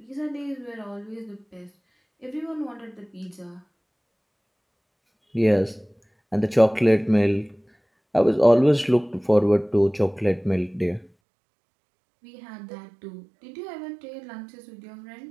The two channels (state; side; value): drops out; left; at 11.1 s